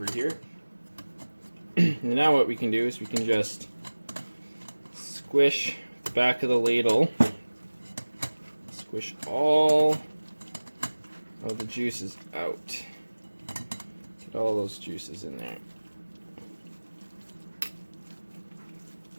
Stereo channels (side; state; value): both; inverted; correlation -1.00